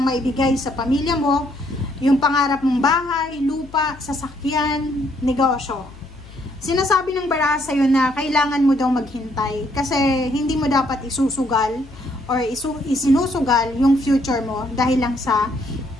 maibigay sa pamilya mo, yung pangarap mong bahay, lupa, sasakyan, negosyo. Sinasabi ng baraha sa'yo na kailangan mo daw maghintay kasi hindi mo dapat isusugal or isinusugal yung future mo dahil lang sa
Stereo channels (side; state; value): left; noise; hum, 20 dB below the sound